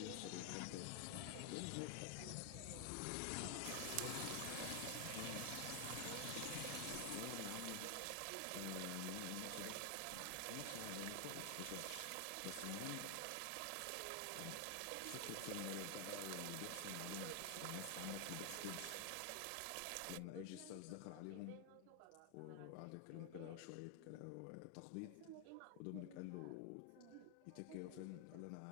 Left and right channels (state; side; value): different; both; correlation 0.00